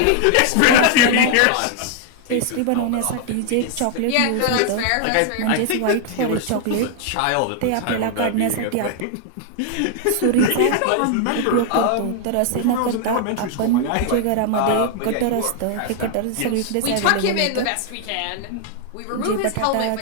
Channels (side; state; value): both; different; correlation 0.00